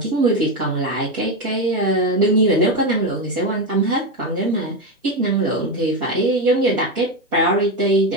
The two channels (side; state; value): both; normal; correlation 0.12